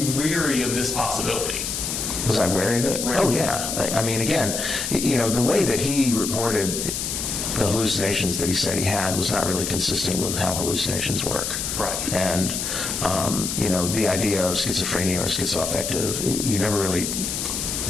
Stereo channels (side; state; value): left; noise; hiss, 3 dB below the sound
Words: weary of this possibility? Was I wary of it? Oh, yeah. I mean, again, you know, the way that he reported the hallucinations that he said he had was not really consistent with how hallucinations work. Right. And, you know, the idea of schizophrenia or schizoaffective, you never really